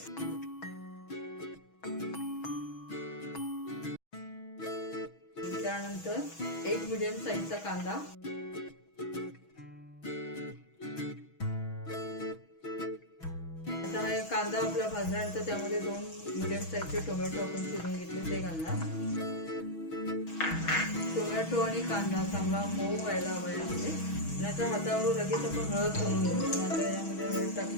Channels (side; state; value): right; late; 6.2 ms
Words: त्यानंतर 1 मिडियम साईजचा कांदा, आता हा कांदा आपला भाजल्यानंतर त्यामध्ये 2 मिडियम साईजचे टोमॅटो आपण चिरून घेतले ते घालणार. टोमॅटो आणि कांदा चांगला मऊ व्हायला हवा यामध्ये. नाहीतर हातावर लगेच आपण हळद घालून घेऊ, आता यामध्ये हळद